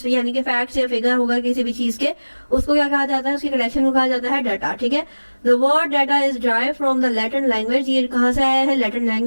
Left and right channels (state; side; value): inverted; both; correlation -1.00